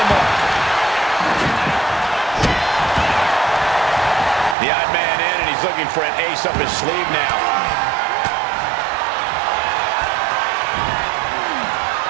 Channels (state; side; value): drops out; left; at 4.5 s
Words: mark. The odd man in, and he's looking for an ace up his sleeve now.